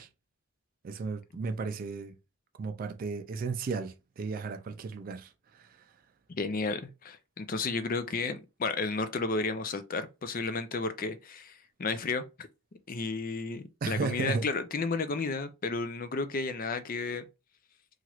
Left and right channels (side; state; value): both; normal; correlation 0.31